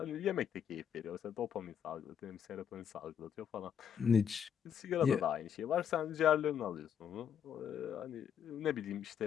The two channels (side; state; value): right; quieter; 8.3 dB